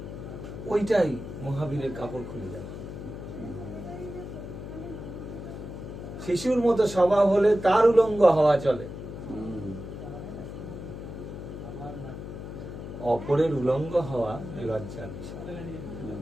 ওইটাই মহাবীরের কাপড় খুলে যাবে। শিশুর মতো স্বভাব হলে তার উলঙ্গ হওয়া চলে, অপরের উলঙ্গ হওয়া লজ্জার বিষয়।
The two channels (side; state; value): left; noise; hum, 9 dB below the sound